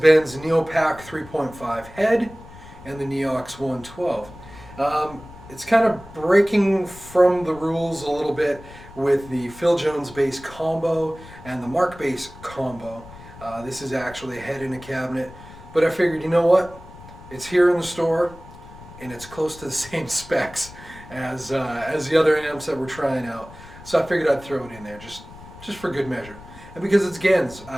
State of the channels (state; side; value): noise; left; rumble, 18 dB below the sound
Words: Neo-Pak 3.5 head and the NeoX 112. It's kind of breaking from the rules a little bit with the Phil Jones bass combo and the Mark bass combo. This is actually a head in a cabinet, but I figured, you know what? It's here in the store and it's close to the same specs as the other amps that we're trying out. So I figured I'd throw it in there just for good measure. And because it's Genz,